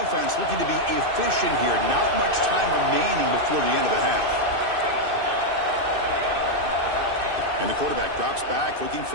looking to be efficient here. Not much time remaining before the end of the half. And the quarterback drops back looking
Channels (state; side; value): late; left; 2.6 ms